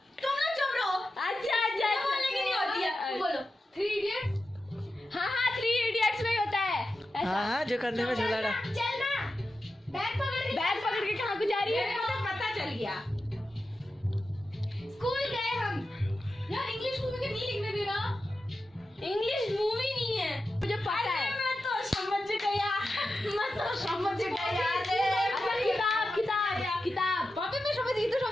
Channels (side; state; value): both; normal; correlation 0.91